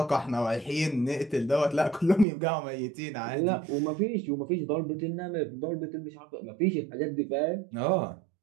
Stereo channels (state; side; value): drops out; left; at 2.2 s